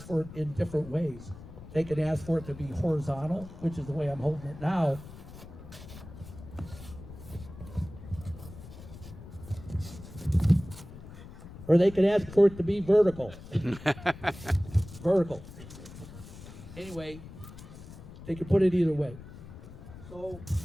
for it in different ways. They can ask for it to be horizontal, which is the way I'm holding it now. Or they can ask for it to be vertical. Vertical. Anyway, they can put it either way. So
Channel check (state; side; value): noise; left; rumble, 15 dB below the sound